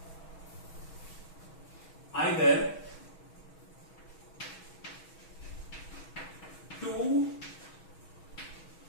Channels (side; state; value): right; late; 6.2 ms